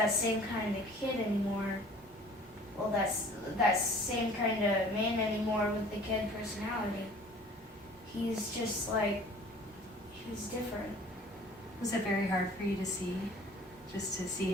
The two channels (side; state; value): both; normal; correlation 0.49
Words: same kind of kid anymore. Well, that same kind of man anymore with the kid personality. He's just like, he's different. Was it very hard for you to see? Just to see